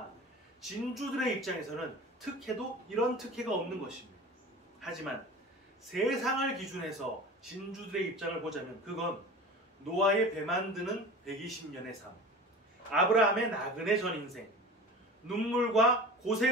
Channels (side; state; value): both; normal; correlation 0.35